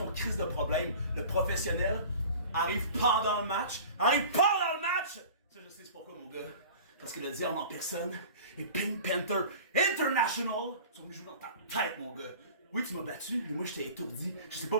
crise de problème? Le professionnel arrive pendant le match. Arrive pendant le match! Ça, je sais c'est pourquoi, mon gars. Parce que le diable en personne et Pink Panther International sont venus jouer dans ta tête, mon gars. Oui, tu m'as battu, mais moi, je t'ai étourdi. Je sais pas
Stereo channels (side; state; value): both; inverted; correlation -0.41